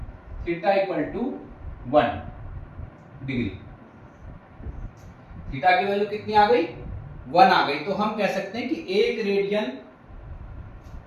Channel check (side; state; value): both; identical; correlation 1.00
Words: theta equal to 1 degree. Theta की वैल्यू कितनी आ गई, 1 आ गई। तो हम कह सकते हैं कि एक